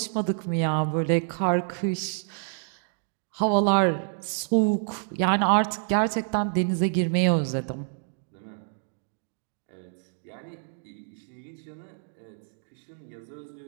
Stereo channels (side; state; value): left; silent; digital silence